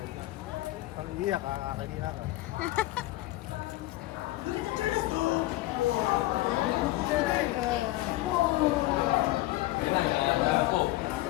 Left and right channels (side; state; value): right; quieter; 17.8 dB